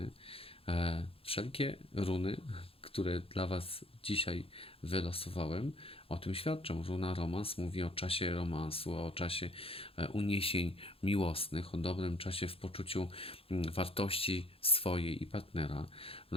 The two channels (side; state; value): right; late; 0.27 ms